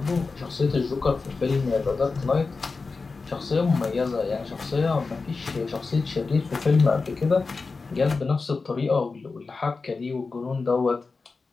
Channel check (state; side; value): quieter; right; 4.2 dB